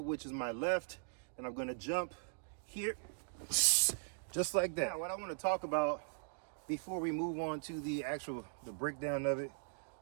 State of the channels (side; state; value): left; silent; digital silence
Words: which is my left, and I'm gonna jump here, just like that. Now, what I wanna talk about before we move on to the breakdown of it,